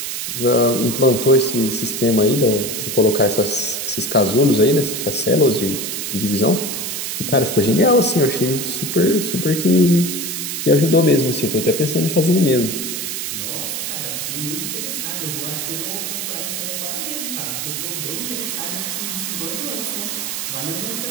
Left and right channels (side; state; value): right; noise; hiss, 4 dB below the sound